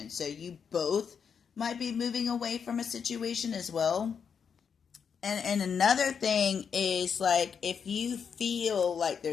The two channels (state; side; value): quieter; right; 6.7 dB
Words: So you both might be moving away from a situation as well. And another thing is, like, if you feel like